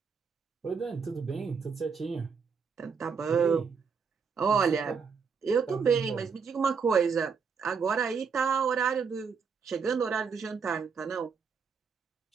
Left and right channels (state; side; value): quieter; left; 5.8 dB